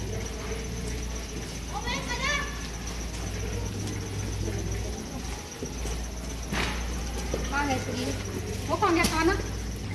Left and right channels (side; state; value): both; identical; correlation 1.00